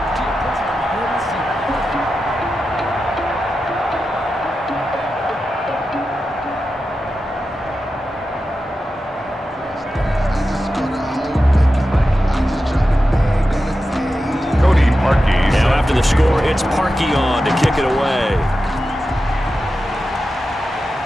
The score, it's Parkey on to kick it away.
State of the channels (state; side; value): normal; both; correlation 0.91